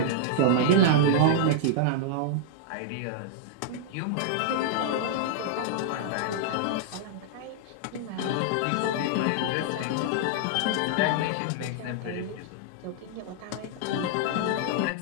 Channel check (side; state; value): both; different; correlation -0.01